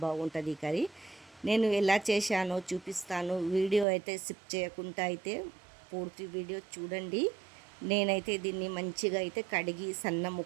బాగుంటుంది ఈ కర్రీ. నేను ఎలా చేశానో చూపిస్తాను. వీడియో అయితే స్కిప్ చేయకుండా అయితే పూర్తి వీడియో చూడండి. నేనైతే దీన్ని మంచిగా అయితే కడిగి సన్న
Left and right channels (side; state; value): left; drops out; at 3.9 s